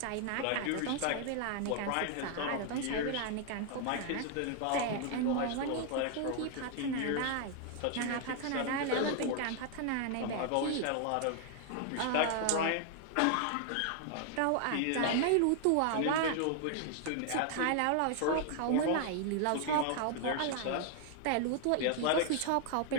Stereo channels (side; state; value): both; different; correlation 0.00